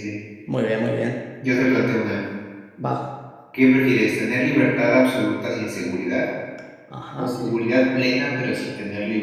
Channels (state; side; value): identical; both; correlation 1.00